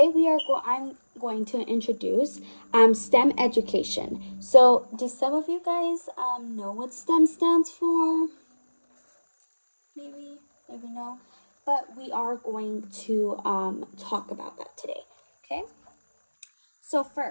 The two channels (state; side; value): inverted; both; correlation -1.00